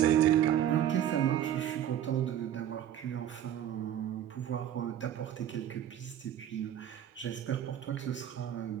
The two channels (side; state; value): left; quieter; 10.6 dB